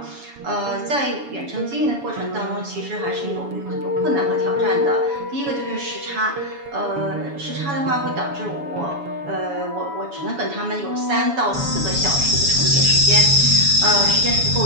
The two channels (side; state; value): left; late; 7.1 ms